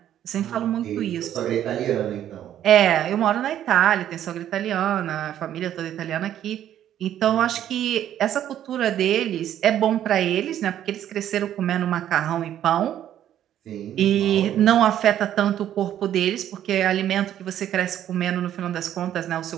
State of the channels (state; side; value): quieter; left; 11.1 dB